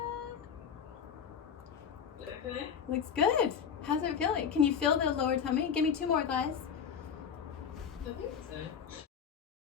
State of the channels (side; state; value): right; quieter; 7.3 dB